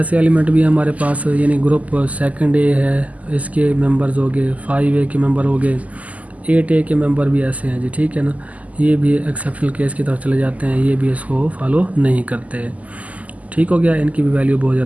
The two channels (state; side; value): late; left; 0.073 ms